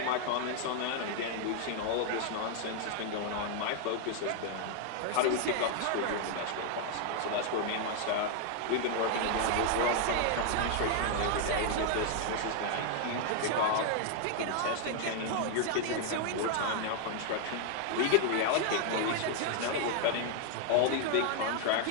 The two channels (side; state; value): both; different; correlation 0.00